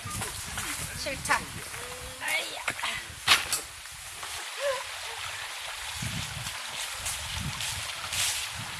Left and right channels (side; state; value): both; identical; correlation 1.00